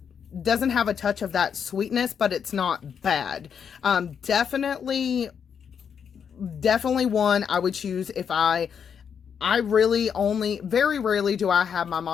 doesn't have a touch of that sweetness, but it's not bad. Definitely one I would choose if I really only, very rarely do I have my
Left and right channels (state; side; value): quieter; right; 7.3 dB